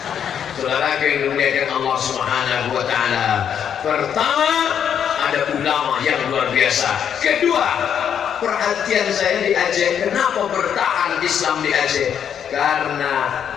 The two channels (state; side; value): quieter; right; 8.5 dB